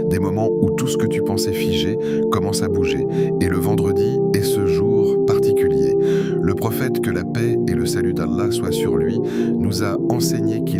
Des moments où tout ce que tu pensais figé commence à bouger. Et le vendredi est ce jour particulier. Le prophète, que la paix et le salut d'Allah soient sur lui, nous a enseigné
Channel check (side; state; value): both; identical; correlation 1.00